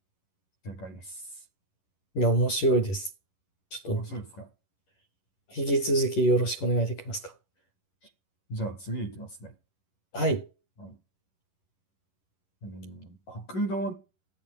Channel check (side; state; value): right; late; 11 ms